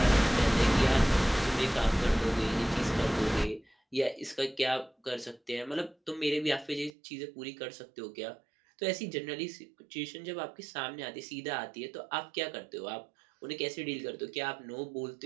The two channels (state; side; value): drops out; left; at 6.9 s